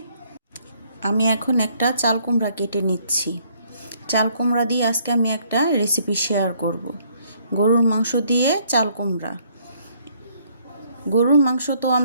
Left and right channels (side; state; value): both; inverted; correlation -0.66